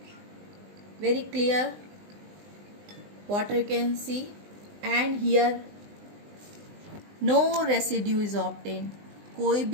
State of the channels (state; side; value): late; left; 20 ms